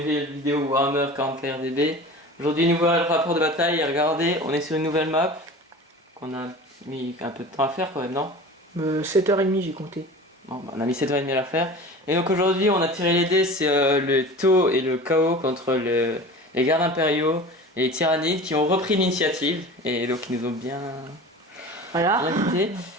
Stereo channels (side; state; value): both; normal; correlation 0.37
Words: vidéo Warhammer 40k RDB. Aujourd'hui, nouveau rapport de bataille, et regardez, on est sur une nouvelle map qu'on a mis un peu de temps à faire quand même, non 7h30 j'ai compté. Bon, bah, on a mis 7h30 à la faire. Et donc aujourd'hui, on a tiré les dés, c'est le taux et le chaos contre les gardes impériaux et les tyrannides qui ont repris l'initiative et donc ils nous ont bien invités.